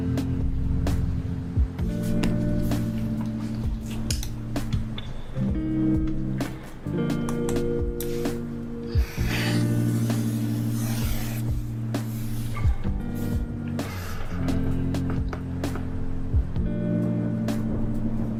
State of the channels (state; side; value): identical; both; correlation 1.00